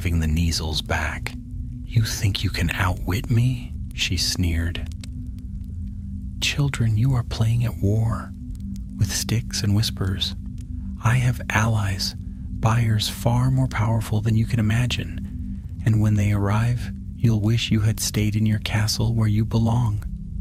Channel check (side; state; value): both; identical; correlation 1.00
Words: the Kneazles back. "You think you can outwit me?" she sneered. "Children, you are playing at war, with sticks and whispers. I have allies, buyers far more powerful than you can imagine, and when they arrive, you'll wish you had stayed in your castle where you belong."